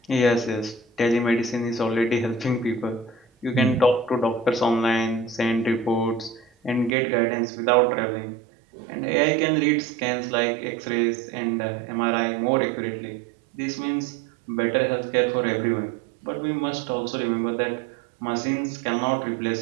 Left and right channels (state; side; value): drops out; left; at 6.9 s